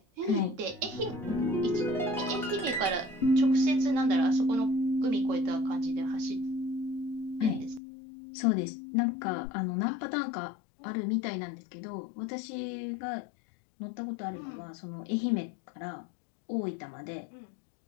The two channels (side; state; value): right; drops out; at 7.8 s